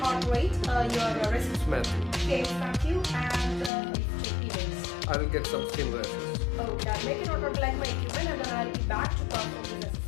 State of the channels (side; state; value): right; drops out; at 3.7 s